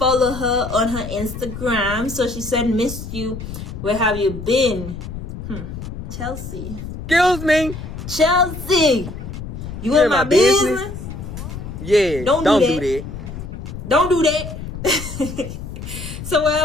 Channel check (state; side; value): noise; left; rumble, 9 dB below the sound